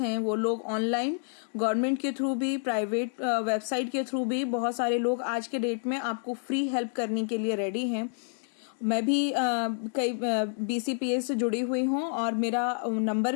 हैं। वो लोग ऑनलाइन, गवर्नमेंट के थ्रू भी, प्राइवेट वेबसाइट के थ्रू भी, बहुत सारे लोग आज के डेट में आपको फ्री हेल्प करने के लिए रेडी हैं। मैं भी कई BCPS से जुड़ी हुई हूँ और मेरा नंबर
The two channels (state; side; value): silent; right; digital silence